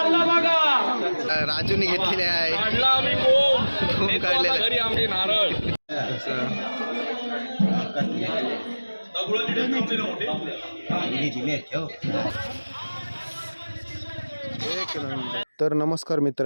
बघा. राजूने घेतलेले आहे. काढला आम्ही खूप काढलेला घरी आमचे नारळ. तर नमस्कार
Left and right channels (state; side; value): inverted; both; correlation -1.00